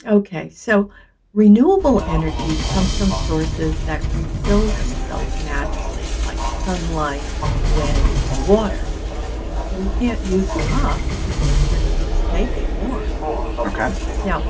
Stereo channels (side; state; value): both; identical; correlation 1.00